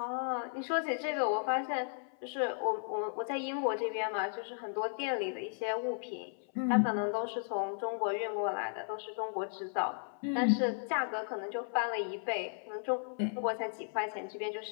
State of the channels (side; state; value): right; silent; 54 dB below the other